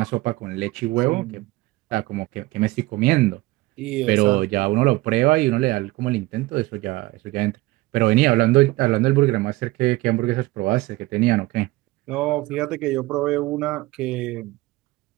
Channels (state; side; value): quieter; left; 20.0 dB